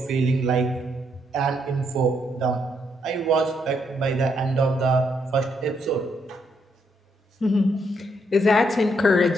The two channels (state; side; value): normal; both; correlation 0.75